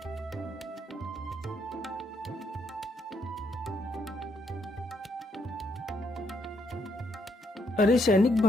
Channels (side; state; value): both; normal; correlation 0.75